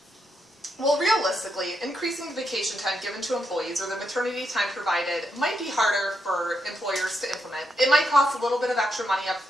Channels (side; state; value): both; normal; correlation 0.81